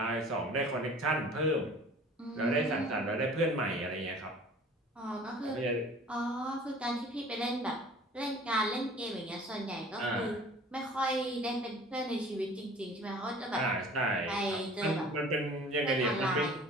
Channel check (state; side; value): normal; both; correlation 0.47